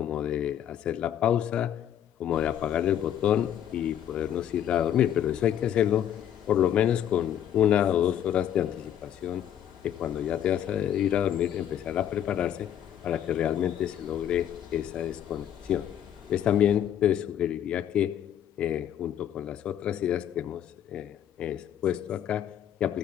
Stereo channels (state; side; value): quieter; right; 10.2 dB